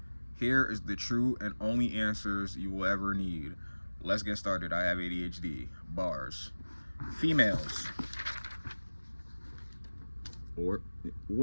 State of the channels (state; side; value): inverted; both; correlation -1.00